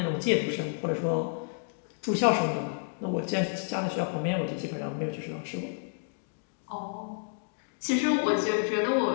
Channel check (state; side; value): silent; right; digital silence